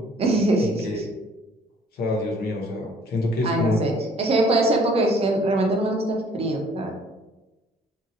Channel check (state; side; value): normal; both; correlation 0.58